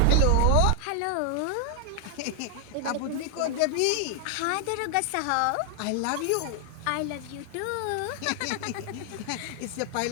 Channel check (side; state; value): both; different; correlation 0.00